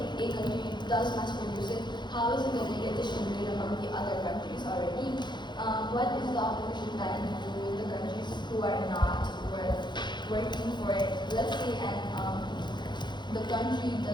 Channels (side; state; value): right; late; 0.22 ms